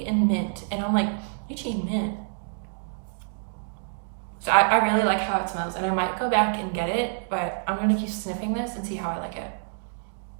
and mint, and I'm like, lychee and mint. So I really like how it smells, and I might go back and get it, but I'm gonna keep sniffing this and see how I like it.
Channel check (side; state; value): left; silent; digital silence